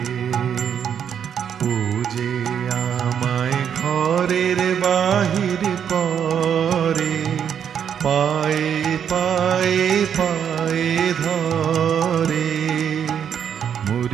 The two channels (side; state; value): left; quieter; 8.3 dB